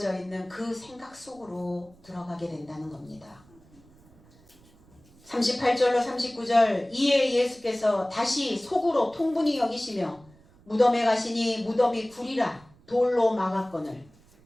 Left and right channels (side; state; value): right; noise; rumble, 28 dB below the sound